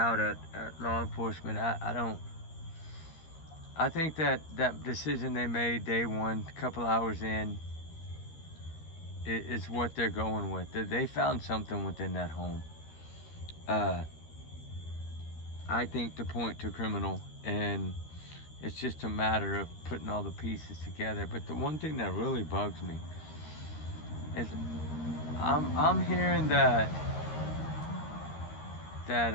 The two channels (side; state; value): right; late; 13 ms